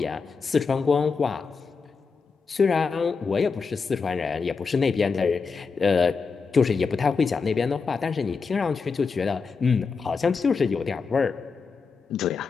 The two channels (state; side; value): quieter; right; 5.0 dB